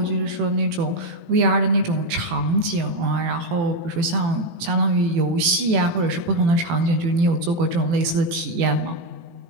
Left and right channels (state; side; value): late; left; 18 ms